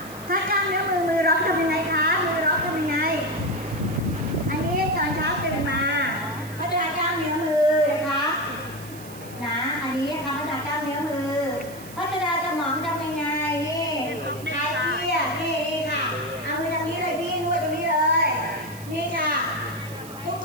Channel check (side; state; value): right; noise; hiss, 17 dB below the sound